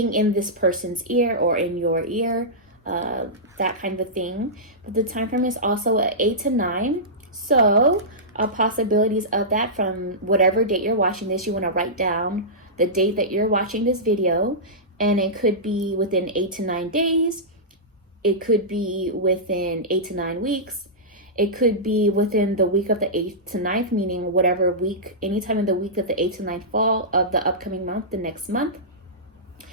in this person's ear or in your ear, that kind of thing. But the time frame is also at 8 to 9. So possibilities of that from whatever date you're watching this, you want to write down the date that you're watching this video, and it could be within 8 to 9 days. It could be within 8 to 9 weeks. It could be within the week of the 8th to 9th, meaning whatever week, anytime in the week of the 8th to 9th fall of the upcoming month, the next month.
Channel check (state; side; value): normal; both; correlation -0.15